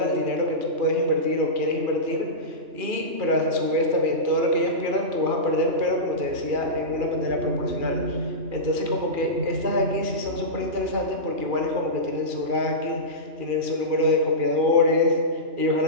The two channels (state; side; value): late; left; 2.4 ms